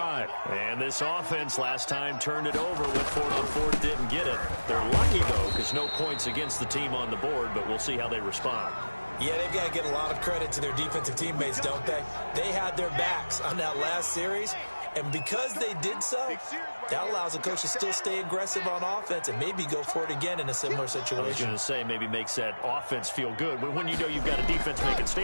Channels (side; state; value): both; inverted; correlation -1.00